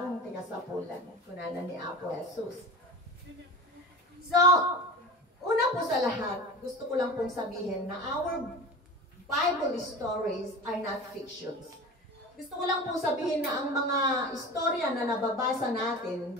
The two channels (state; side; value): normal; both; correlation 0.33